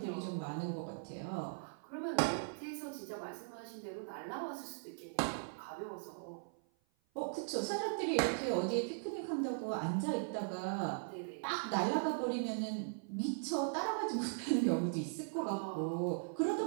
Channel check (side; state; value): left; silent; 52 dB below the other